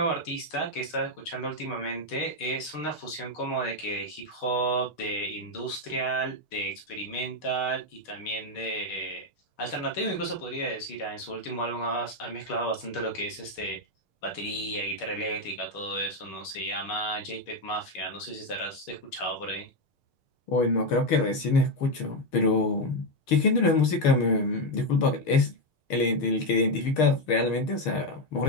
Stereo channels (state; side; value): late; right; 6.5 ms